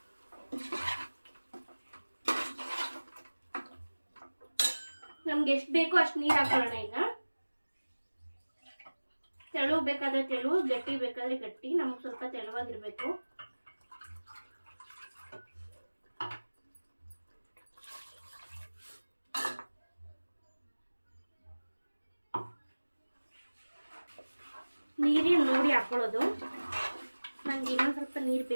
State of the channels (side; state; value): both; inverted; correlation -1.00